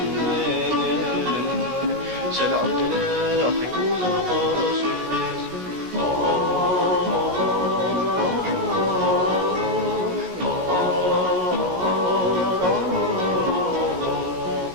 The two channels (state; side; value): late; left; 16 ms